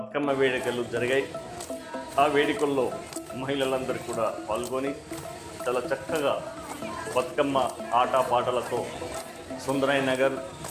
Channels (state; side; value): identical; both; correlation 1.00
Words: వేడుకలు జరిగాయి. ఆ వేడుకల్లో మహిళలందరూ కూడా పాల్గొని చాలా చక్కగా బతుకమ్మ ఆట పాటలతో సుందరై నగర్